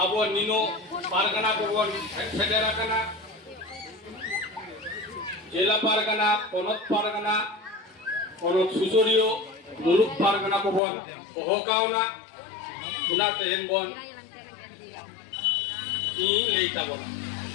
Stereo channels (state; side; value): drops out; right; at 10.8 s